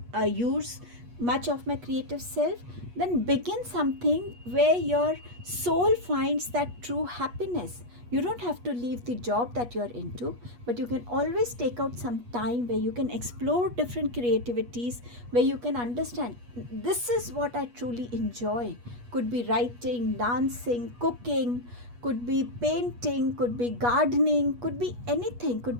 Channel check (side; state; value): left; late; 8.3 ms